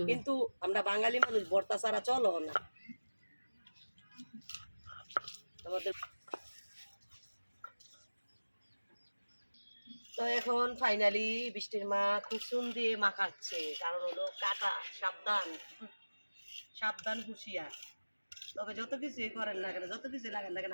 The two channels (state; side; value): inverted; both; correlation -1.00